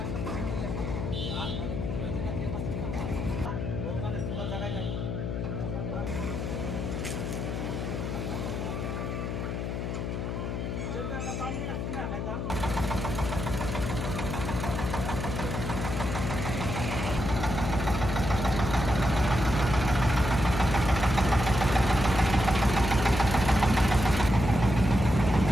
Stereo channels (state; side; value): noise; left; hum, 3 dB below the sound